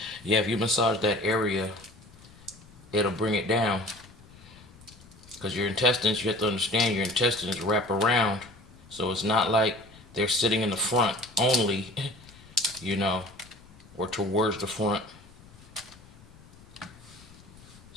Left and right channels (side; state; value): left; noise; rumble, 23 dB below the sound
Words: Yeah, if you massage that area, it'll bring it down. Because your intestines, you have to understand, your intestines wrap around. So it's not like they're sitting in the front only, you know, or towards the front.